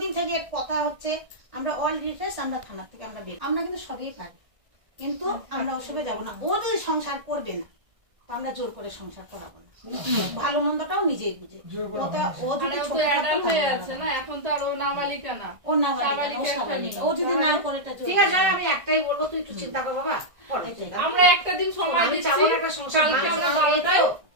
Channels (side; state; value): left; late; 1.6 ms